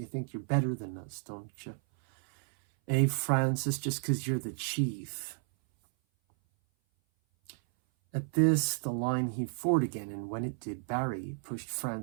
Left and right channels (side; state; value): left; silent; 56 dB below the other